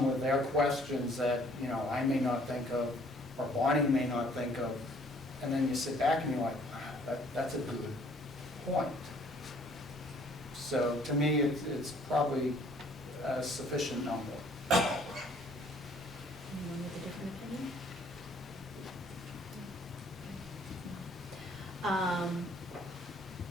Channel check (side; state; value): both; normal; correlation 0.59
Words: with their questions that, you know, I may not think of, or Bonnie may not think of, and then you sit back and you're like, wow, that's a good point. So to me, it's probably a sufficient number. Anyone with a different opinion?